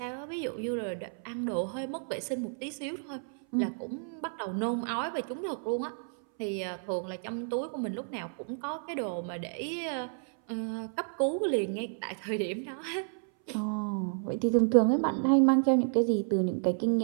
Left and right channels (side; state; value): left; silent; 57 dB below the other